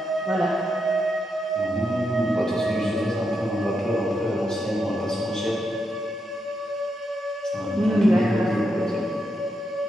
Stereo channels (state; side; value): normal; both; correlation 0.83